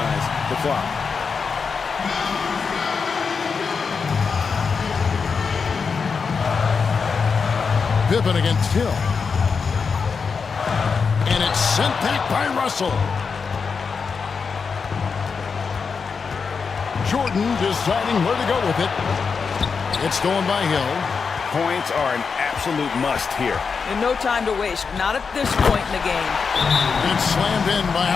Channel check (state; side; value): quieter; right; 5.4 dB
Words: the clock. Pippen against Hill. And it's sent back by Russell. Jordan deciding where to go with it. It's going by Hill. Points are an absolute must here. And no time to waste. Not at this point in the game. It's slammed in by